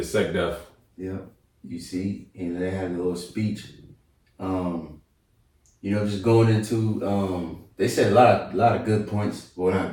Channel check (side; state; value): both; identical; correlation 1.00